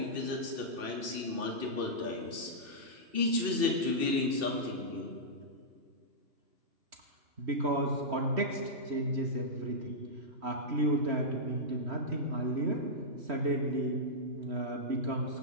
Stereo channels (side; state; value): left; late; 2.6 ms